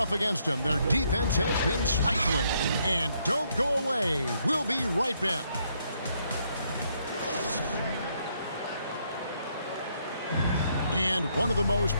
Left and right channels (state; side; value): inverted; both; correlation -0.73